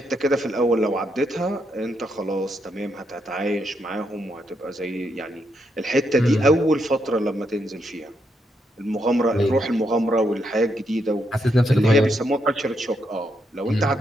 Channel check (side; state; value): both; normal; correlation 0.79